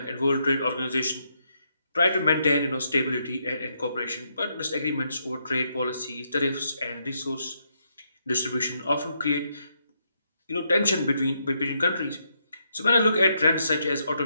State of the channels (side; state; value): both; inverted; correlation -0.78